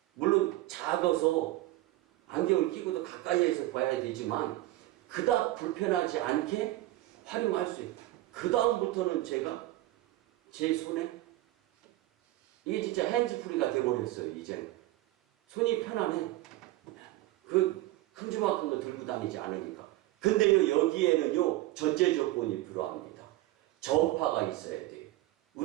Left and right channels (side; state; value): left; quieter; 17.0 dB